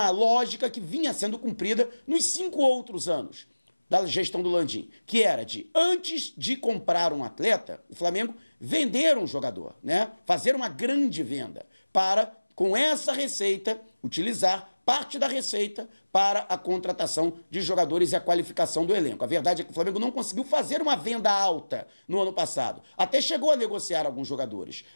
lógica que vinha sendo cumprida nos 5 outros anos da gestão do Landim, que era de, antes de comprar um atleta, o Flamengo vender um jogador, né? Fazer uma grande venda para, com essa receita, utilizar parte da receita para a contratação de jogadores e a qualificação do elenco. A verdade é que o Flamengo não conseguiu fazer uma venda alta no ano passado. Até chegou a negociar alguns jogadores,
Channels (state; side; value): inverted; both; correlation -1.00